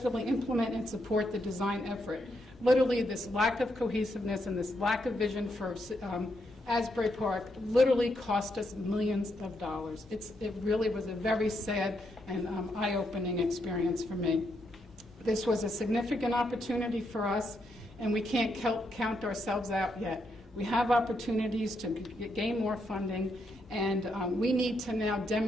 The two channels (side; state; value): both; normal; correlation 0.79